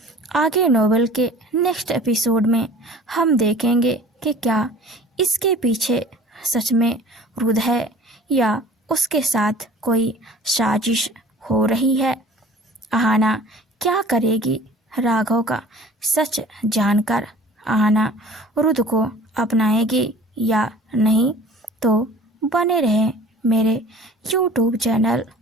आगे नोवेल के नेक्स्ट एपिसोड में हम देखेंगे कि क्या इसके पीछे सच में रुद्र है या उसके साथ कोई साजिश हो रही है। अहाना क्या करेगी राघव का सच जानकर? अहाना रुद्र को अपनाएगी या नहीं? तो बने रहें मेरे YouTube channel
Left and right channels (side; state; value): both; normal; correlation 0.46